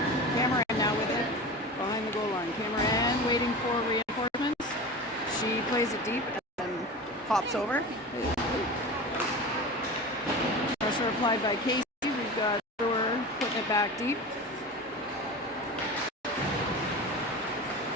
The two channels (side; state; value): both; normal; correlation 0.31